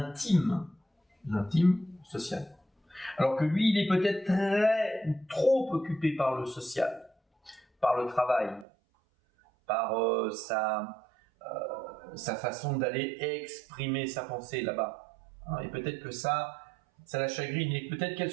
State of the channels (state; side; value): drops out; left; at 8.7 s